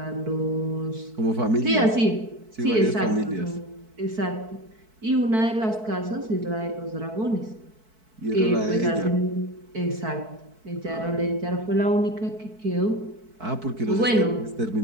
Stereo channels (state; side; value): late; left; 4.6 ms